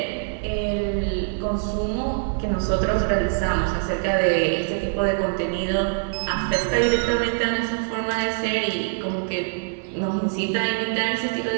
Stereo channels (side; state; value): left; silent; digital silence